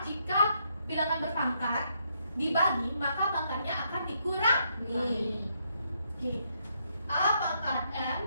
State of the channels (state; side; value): inverted; both; correlation -0.76